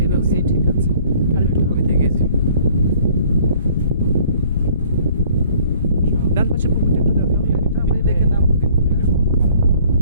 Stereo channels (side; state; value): both; inverted; correlation -0.56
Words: আছে। এই ঠিক আছে। আর একটু আমি দেখেছি। ডান পাশে পুকুরটা একটু দেখাও, এটা আমি দেখে নামবো কিন্তু, হ্যাঁ?